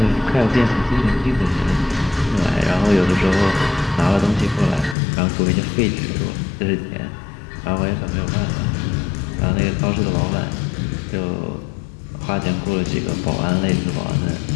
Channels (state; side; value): drops out; right; at 5.0 s